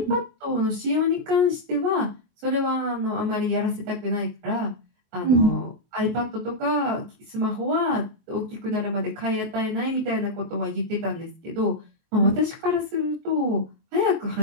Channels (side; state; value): left; late; 24 ms